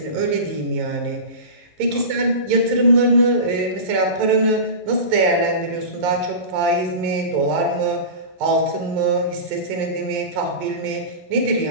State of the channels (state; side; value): late; left; 11 ms